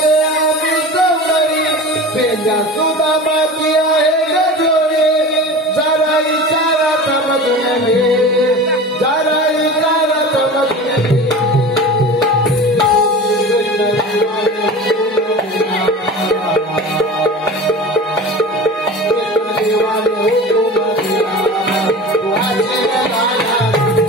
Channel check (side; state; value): both; normal; correlation 0.34